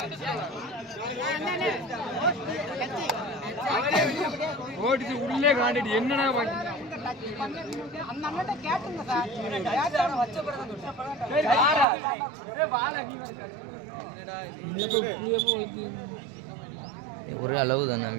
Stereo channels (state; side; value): drops out; left; at 11.9 s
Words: உள்ளே காண்டிட்டு என்னன்னா ஒரு அளவு தானே